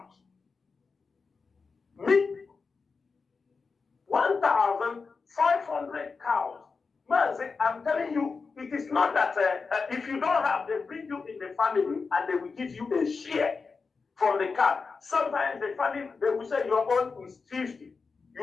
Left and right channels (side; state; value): right; quieter; 4.7 dB